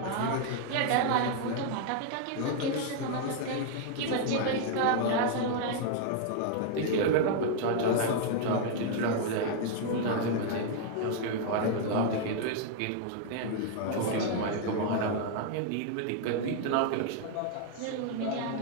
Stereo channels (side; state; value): both; different; correlation 0.00